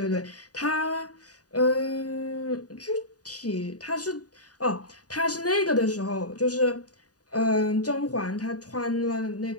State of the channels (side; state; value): right; late; 0.68 ms